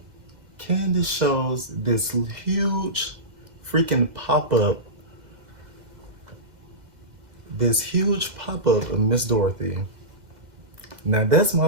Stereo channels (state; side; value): late; left; 2.0 ms